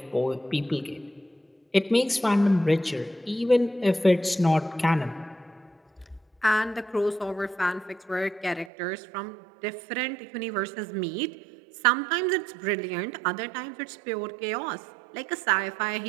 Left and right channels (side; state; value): left; drops out; at 8.7 s